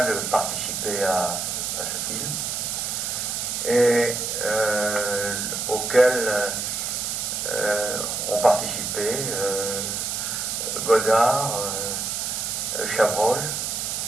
de participer à ce film, et auquel ont participé Godard, Chabrol,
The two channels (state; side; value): noise; right; hiss, 2 dB below the sound